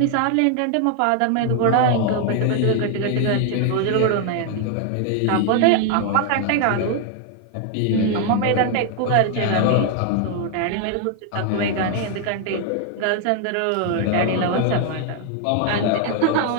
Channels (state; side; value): different; both; correlation 0.00